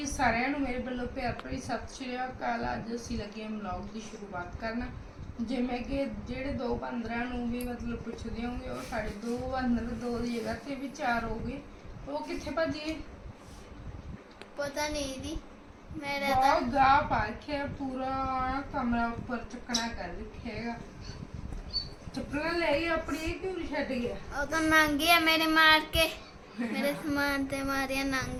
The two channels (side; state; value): both; identical; correlation 1.00